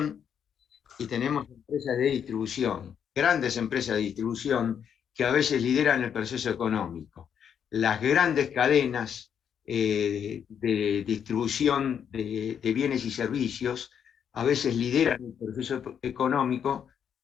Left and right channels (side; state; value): right; quieter; 8.2 dB